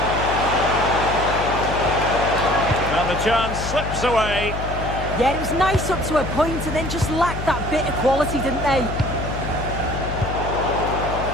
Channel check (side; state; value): left; noise; hum, 6 dB below the sound